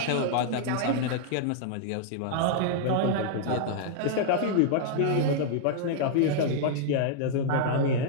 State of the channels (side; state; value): both; different; correlation -0.01